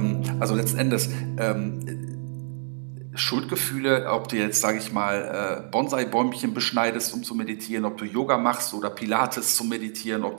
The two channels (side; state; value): left; silent; 61 dB below the other